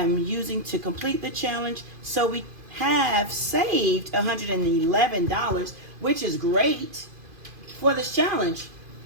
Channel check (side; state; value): left; late; 2.5 ms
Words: using to complete the challenge. So we have saved $111, which is great for this challenge